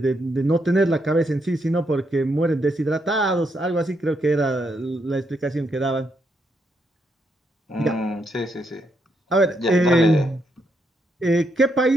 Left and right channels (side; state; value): both; normal; correlation 0.78